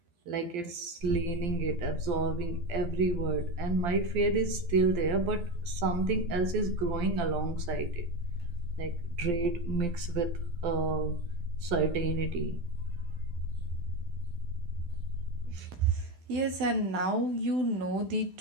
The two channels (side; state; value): left; late; 12 ms